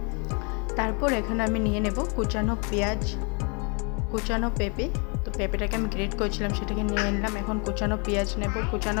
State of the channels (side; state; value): right; quieter; 34.2 dB